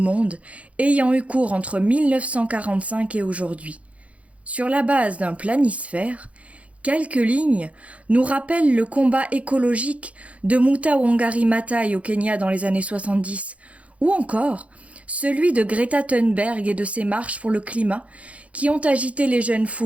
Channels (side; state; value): left; late; 0.065 ms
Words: ayant eu cours entre 1945 et aujourd'hui. Sur la base d'un planisphère, quelques lignes nous rappellent le combat écologique de Muta Wangari Maathai au Kenya dans les années 70, ou encore celui de Greta Thunberg et de ses marches pour le climat qui ont agité les jeunes